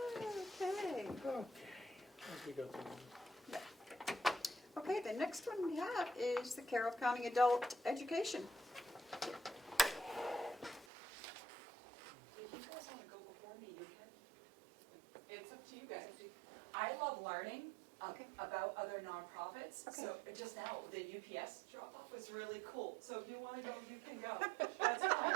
Okay. Okay, as we go through them. Okay, the next one we have is the Carroll County Adult Education. If you guys want to go before me, you can. It's up to you guys. I love learning Okay. about other nonprofits. Okay. So just now, the UPS drop-off was really cool. So if you want to go, you can go. That's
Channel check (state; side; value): drops out; left; at 10.9 s